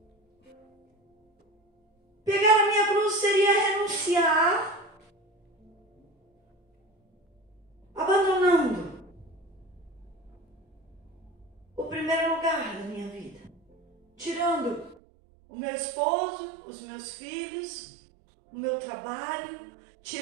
Pegar a minha cruz seria renunciar, abandonando o primeiro lugar da minha vida, tirando o meu esposo, os meus filhos, o meu trabalho,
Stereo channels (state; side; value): drops out; left; at 15.0 s